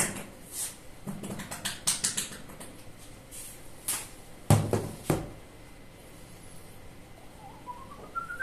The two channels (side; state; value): both; identical; correlation 1.00